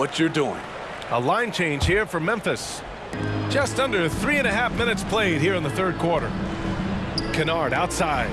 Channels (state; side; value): identical; both; correlation 1.00